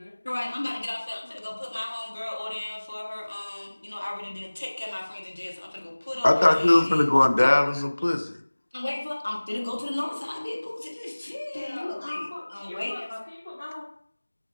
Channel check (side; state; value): both; inverted; correlation -1.00